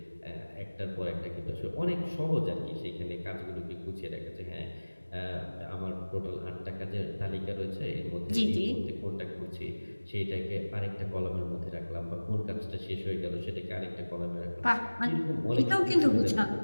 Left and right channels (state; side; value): inverted; both; correlation -1.00